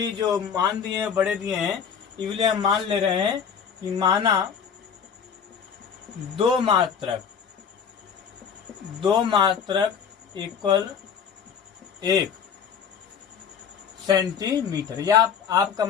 जो मान दिए हैं बड़े दिए हैं, इसलिए हम मान ले रहे हैं कि माना 2 मात्रक इक्वल 1 सेंटीमीटर, या आपका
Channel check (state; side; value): quieter; right; 7.2 dB